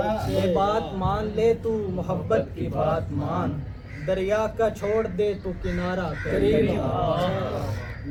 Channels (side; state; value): both; identical; correlation 1.00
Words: لے بات مان لے تو محبت کی بات مان دریا کا چھوڑ دے تو کنارہ قریب